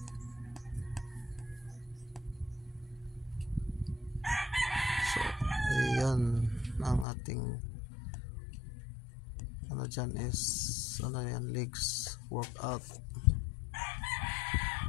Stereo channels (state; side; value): drops out; right; at 7.1 s